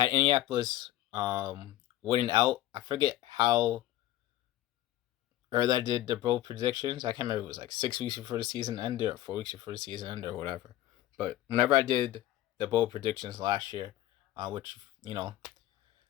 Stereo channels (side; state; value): right; quieter; 14.6 dB